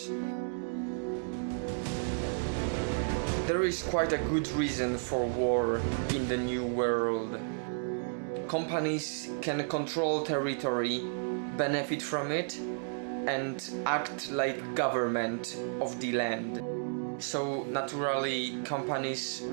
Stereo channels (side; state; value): left; silent; digital silence